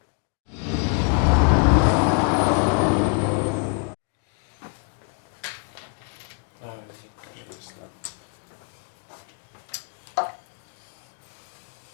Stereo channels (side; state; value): right; quieter; 39.6 dB